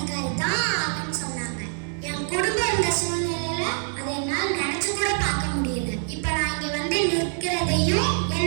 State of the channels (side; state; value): left; silent; 57 dB below the other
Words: தான் ஆகணும்னு சொன்னாங்க. என் குடும்பம் இருந்த சூழ்நிலையில அதை என்னால் நினைச்சு கூட பார்க்க முடியல. இப்ப நான் இங்க வந்து நிற்கிறதையும்